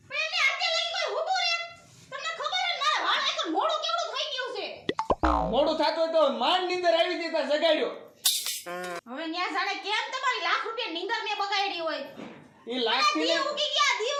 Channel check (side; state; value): both; identical; correlation 1.00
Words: મોડું થાતું તો માંડ નીંદર આવી જતા જગાડ્યો હવે ન્યા જાણે કેમ તમારી લાખ રૂપિયા નીંદર મે બગાડી હોય ઈ લાખ થી દીવ ઉગી ગયા દીવ